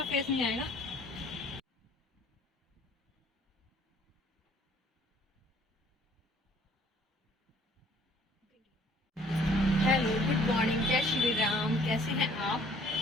फेस नहीं आएगा। हेलो गुड मॉर्निंग, जय श्री राम। कैसे हैं आप?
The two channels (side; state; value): both; normal; correlation 0.58